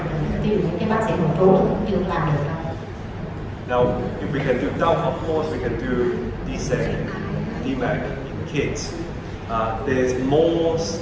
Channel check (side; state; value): both; identical; correlation 1.00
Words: ví dụ những cái bác sĩ nội trú cũng chưa làm được đâu. Now, if we can do doubt, of course we can do DSEC, DMAC in kids. There's more